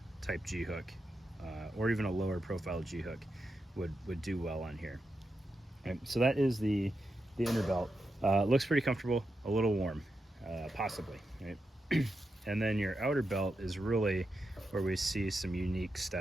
type G-hook or even a lower profile G-hook would do well on here. Right, so that is the inner belt. Looks pretty comfortable, a little warm, possibly, right? And then your outer belt is really where we see some unique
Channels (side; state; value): both; normal; correlation 0.87